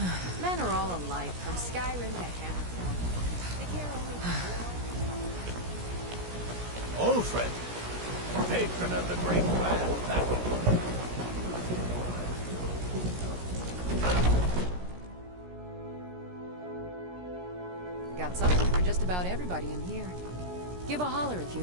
Men are all alike, from Skyrim to Hammerfell. They care only Ulfred, patron of the great clan battle. Got something for just about everybody in here. Give a holler if you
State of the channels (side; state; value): left; late; 17 ms